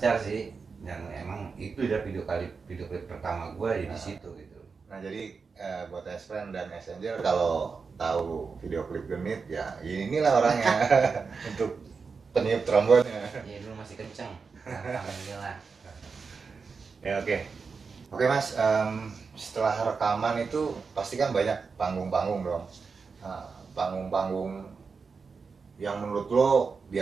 sih, dan emang itu udah video klip pertama gue ya di situ gitu. Nah jadi buat S-Friend dan Messenger kalau tahu video klip Genit ya inilah orangnya untuk peniup trombonnya. Iya, dulu masih kenceng, alhamdulillah. Ya oke Mas, setelah rekaman itu pasti kan banyak panggung-panggung dong. Nah, panggung-panggung yang menurut lo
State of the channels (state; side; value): quieter; left; 5.1 dB